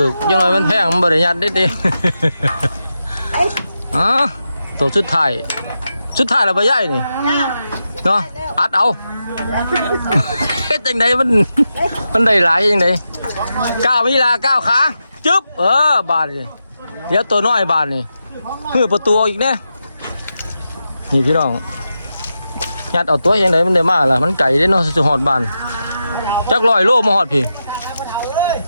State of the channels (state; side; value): inverted; both; correlation -0.89